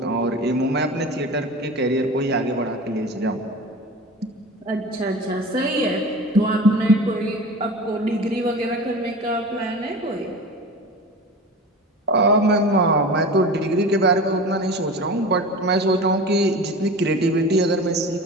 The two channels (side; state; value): both; normal; correlation 0.34